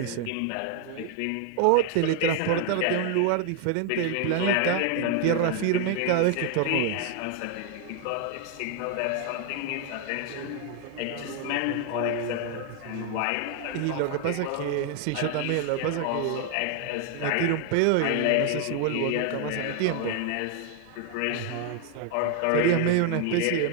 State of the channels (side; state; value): both; different; correlation 0.00